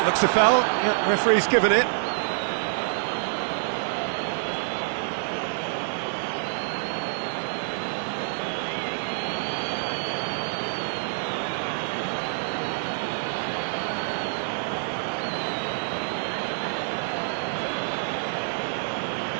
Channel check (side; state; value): left; silent; 60 dB below the other